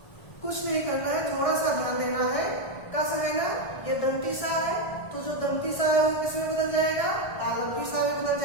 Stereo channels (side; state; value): right; late; 1.6 ms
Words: कुछ नहीं करना है, थोड़ा सा ध्यान देना है। कस है ना, ये दंती सा है, तो जो दंती सा है वो किसमें बदल जाएगा, तालंती सा में बदल